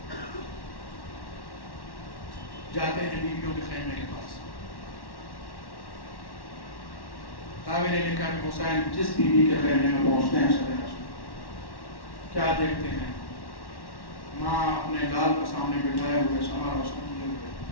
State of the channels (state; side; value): late; right; 1.1 ms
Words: جاتے ہیں بیویوں کے خیمے کے پاس۔ راوی نے لکھا کہ حسین جس بیوی کے خیمے میں پہنچتے ہیں کیا دیکھتے ہیں؟ ماں اپنے لال کو سامنے بٹھائے ہوئے شمع روشن کیے ہوئے